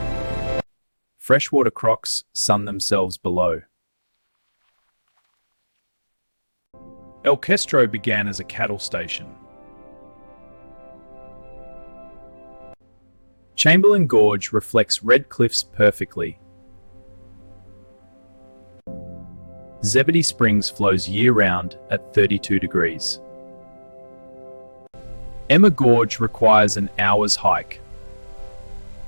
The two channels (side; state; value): both; inverted; correlation -1.00